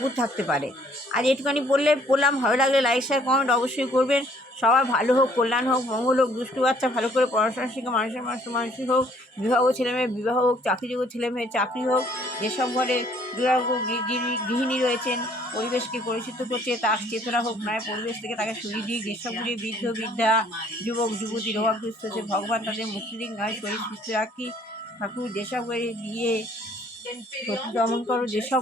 পারে। আর এটুখানি বললাম। ভালো লাগলে লাইক শেয়ার কমেন্ট অবশ্যই করবেন। সবার ভালো হোক, কল্যাণ হোক, মঙ্গল হোক, দুষ্টু বাচ্চা ভালো করে পড়াশোনা শিখে মানুষের হোক, বিবাহ ছেলেমেয়ে বিবাহ হোক, চাকরিযোগ্য ছেলেমেয়ে চাকরি হোক। যেসব ঘরে দুরারোগ্য গৃহিণী রয়েছেন, পরিবেশকে পরিচিত করছে তার চেতনা হোক নয়, পরিবেশ থেকে তাকে সরিয়ে দিয়ে যেসব ঘরে বৃদ্ধ বৃদ্ধা যুবক যুবতী রোগাগ্রস্ত হচ্ছে, ভগবান তাদের মুক্তি দিক নয়, শরীর সুস্থ রাখি ঠাকুর। যেসব ঘরে সত্যি দমন করো, যেসব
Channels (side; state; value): both; normal; correlation 0.60